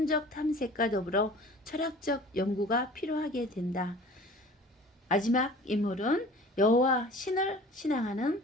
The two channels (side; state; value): both; normal; correlation 0.45